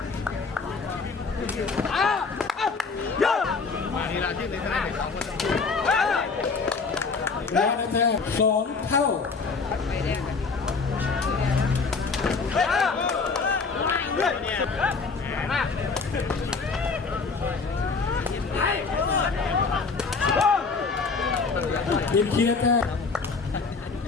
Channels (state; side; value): quieter; right; 4.6 dB